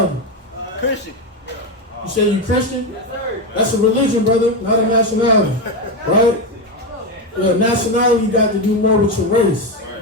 Christian. You say you Christian? That's a religion, brother, not a nationality. Right? Yeah, nationality you got to do more with your race.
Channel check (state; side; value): normal; both; correlation 0.11